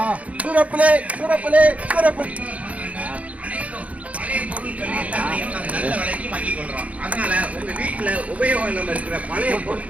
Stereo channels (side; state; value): left; late; 0.067 ms